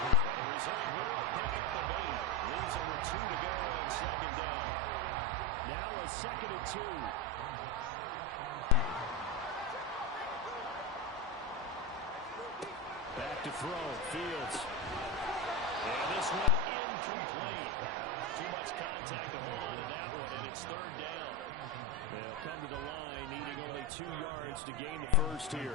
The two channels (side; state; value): both; normal; correlation 0.13